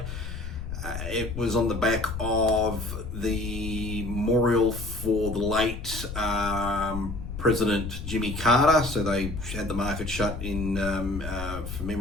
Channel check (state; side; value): noise; left; rumble, 7 dB below the sound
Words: It was on the back of the memorial for the late President Jimmy Carter, so they had the market shut in for